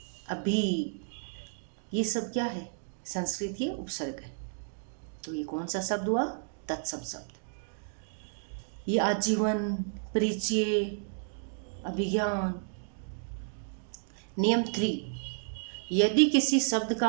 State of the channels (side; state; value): left; silent; digital silence